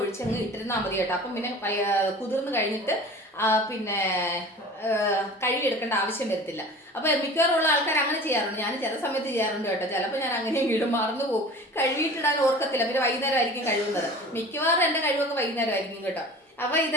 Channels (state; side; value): normal; both; correlation 0.40